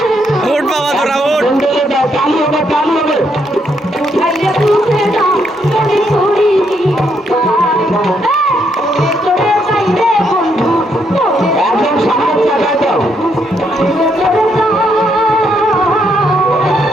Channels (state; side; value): normal; both; correlation 0.75